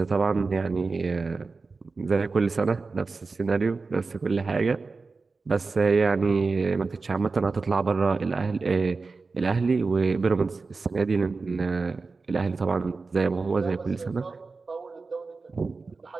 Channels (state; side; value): quieter; left; 4.1 dB